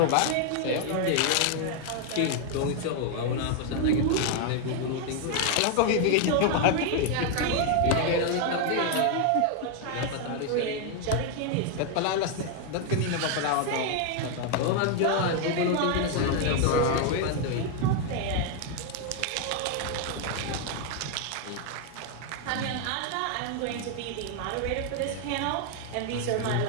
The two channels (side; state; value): both; different; correlation 0.01